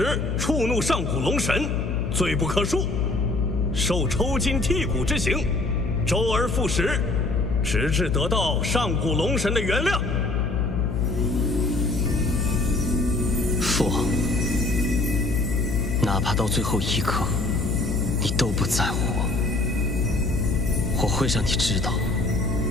触怒上古龙神，罪不可恕，受抽筋剔骨之刑，周而复始，直至得到上古龙神的原谅。父王，哪怕到最后一刻，你都不在乎我会让你知道，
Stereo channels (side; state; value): left; noise; hum, 1 dB below the sound